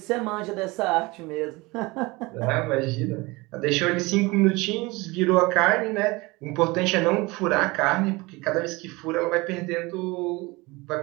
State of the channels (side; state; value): left; quieter; 23.3 dB